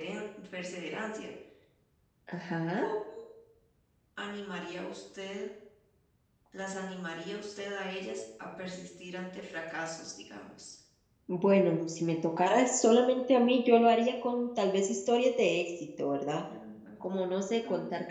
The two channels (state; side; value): identical; both; correlation 1.00